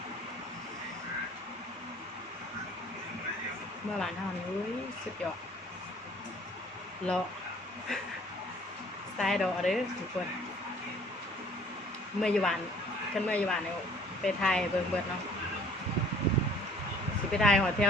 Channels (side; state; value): both; normal; correlation 0.55